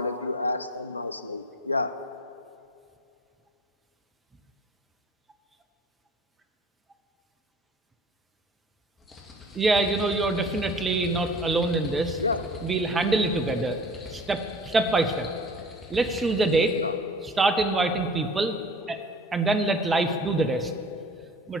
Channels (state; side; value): normal; both; correlation 0.46